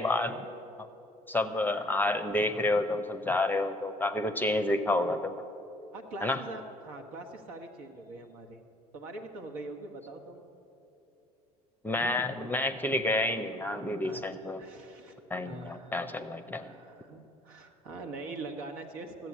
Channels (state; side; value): normal; both; correlation 0.59